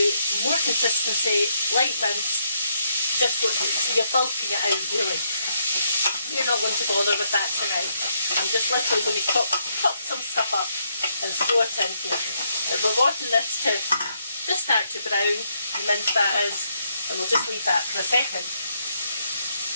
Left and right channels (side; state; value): both; inverted; correlation -0.75